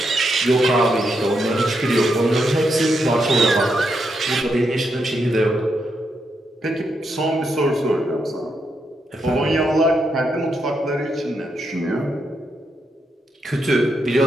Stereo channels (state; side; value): normal; both; correlation 0.81